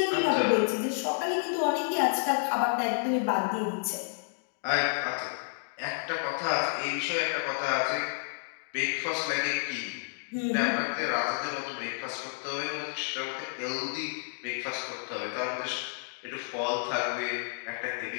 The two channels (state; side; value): silent; right; digital silence